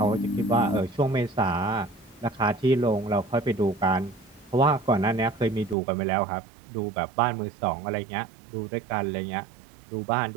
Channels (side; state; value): left; drops out; at 5.8 s